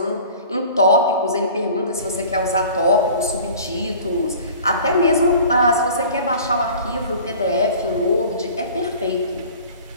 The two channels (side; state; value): both; inverted; correlation -0.44